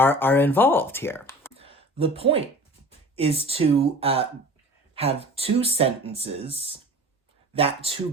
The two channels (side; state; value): both; normal; correlation 0.40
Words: involved here. The point is to have two sentences that